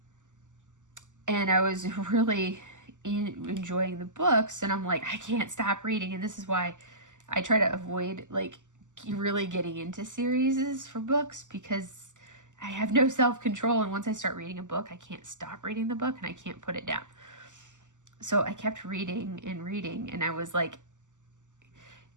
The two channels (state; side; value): late; left; 0.86 ms